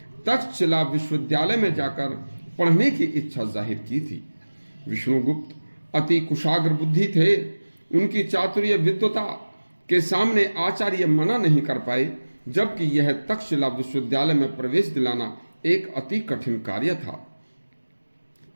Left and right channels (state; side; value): inverted; both; correlation -1.00